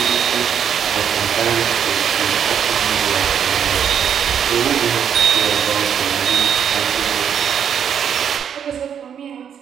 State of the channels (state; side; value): quieter; left; 8.3 dB